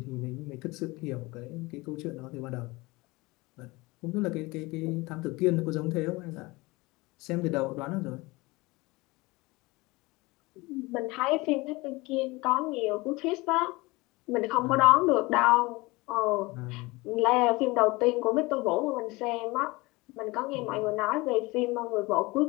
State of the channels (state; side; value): quieter; right; 22.9 dB